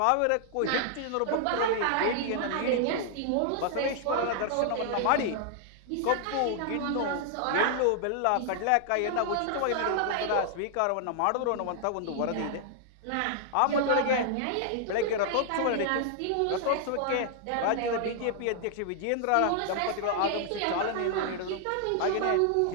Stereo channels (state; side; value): different; both; correlation -0.01